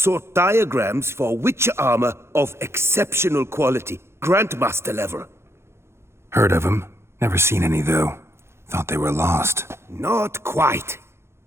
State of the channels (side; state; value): left; late; 0.12 ms